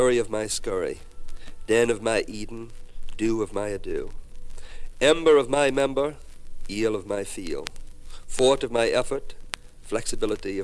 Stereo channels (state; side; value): identical; both; correlation 1.00